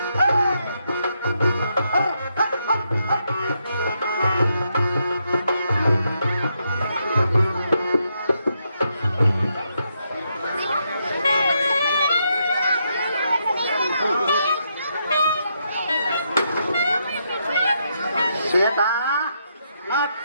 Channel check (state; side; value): inverted; both; correlation -0.79